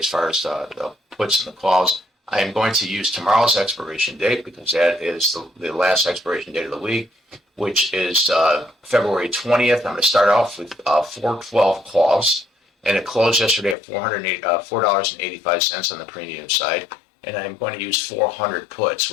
far as the puts and the calls, I am going to use tomorrow's expiration date, because that is the last expiration date of the week, which is February 20th. I'm going to start off with 412 calls, and it closed yesterday at $4.85 on the premium side. And I'm going to use 400 puts,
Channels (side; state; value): right; drops out; at 13.8 s